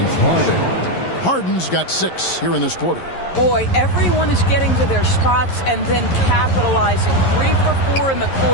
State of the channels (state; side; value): late; right; 11 ms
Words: Harden's got 6 here in this quarter. Boy, everyone is getting to their spots and then capitalizing. 3 for 4 in the